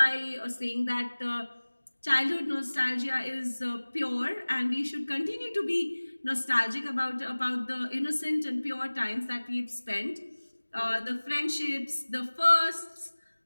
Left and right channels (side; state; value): both; inverted; correlation -1.00